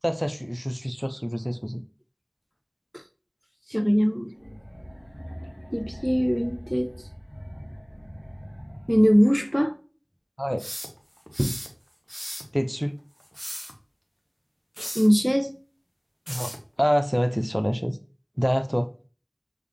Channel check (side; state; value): both; identical; correlation 1.00